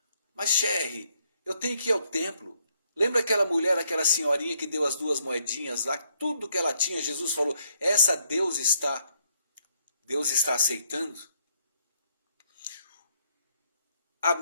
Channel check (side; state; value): both; inverted; correlation -0.72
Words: Mas Sherry, eu tenho que ir ao templo. Lembra aquela mulher, aquela senhorinha que deu as 2 moedinhas lá, tudo que ela tinha, Jesus falou, essa Deus está aceitando? A